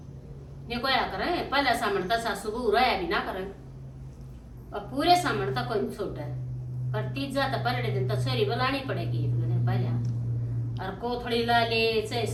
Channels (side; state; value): both; identical; correlation 1.00